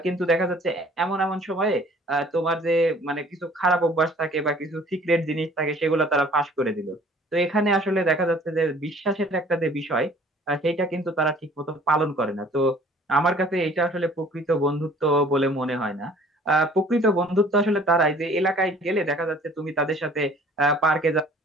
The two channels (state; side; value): normal; both; correlation 0.53